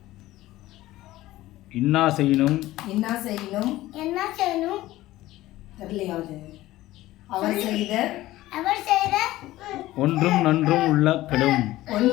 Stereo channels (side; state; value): right; quieter; 16.4 dB